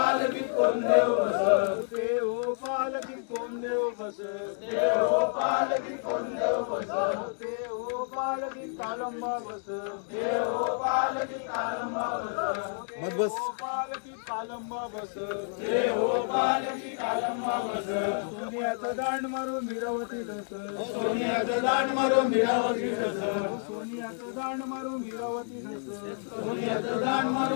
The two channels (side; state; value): right; silent; 58 dB below the other